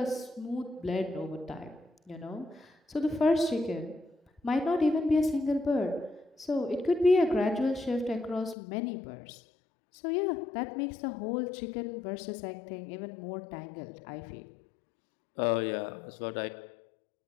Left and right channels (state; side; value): drops out; right; at 8.6 s